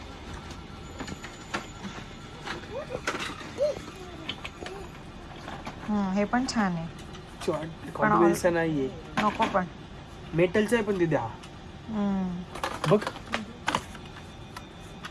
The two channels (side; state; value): both; identical; correlation 1.00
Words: हे पण छान आहे. कॉन्फिडन्स नाहीये. नको पण. मेटलचं आहे पण ते द्या. बघ